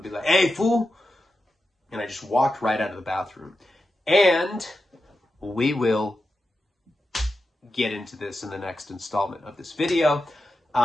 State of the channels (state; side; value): normal; both; correlation 0.90